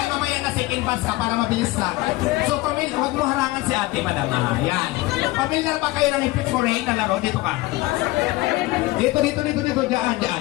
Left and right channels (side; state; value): right; quieter; 19.8 dB